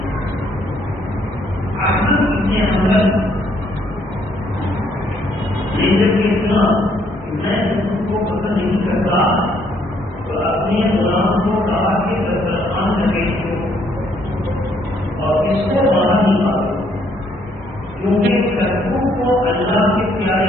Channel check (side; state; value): both; normal; correlation 0.68